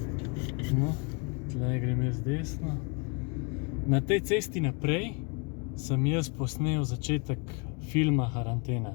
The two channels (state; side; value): quieter; right; 32.4 dB